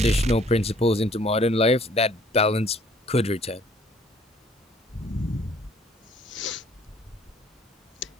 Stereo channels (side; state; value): both; normal; correlation 0.59